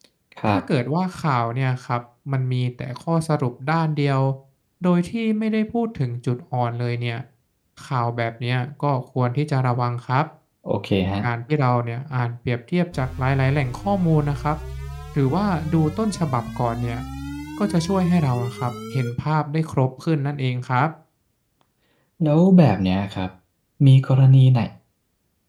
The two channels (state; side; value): identical; both; correlation 1.00